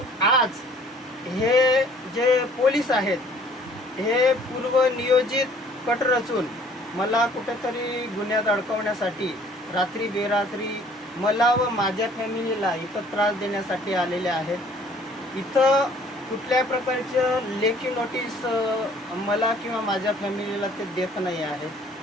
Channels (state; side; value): normal; both; correlation 0.56